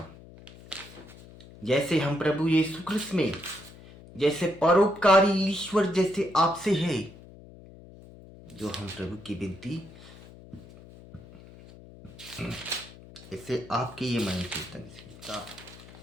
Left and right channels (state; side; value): noise; left; hum, 19 dB below the sound